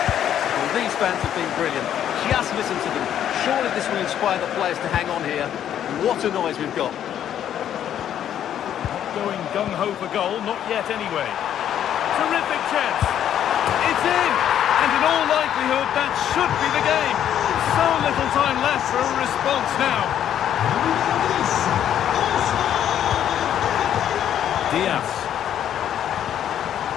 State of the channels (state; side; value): quieter; right; 10.2 dB